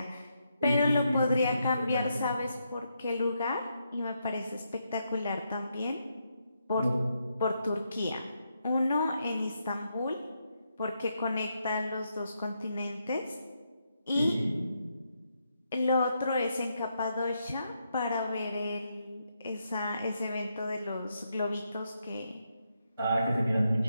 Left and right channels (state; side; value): inverted; both; correlation -0.81